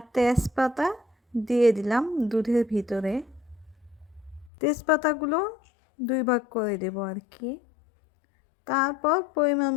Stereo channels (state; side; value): drops out; right; at 4.5 s